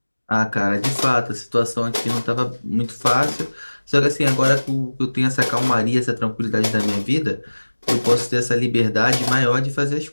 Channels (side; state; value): both; inverted; correlation -1.00